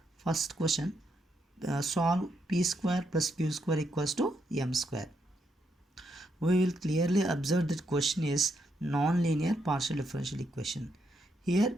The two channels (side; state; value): both; normal; correlation 0.79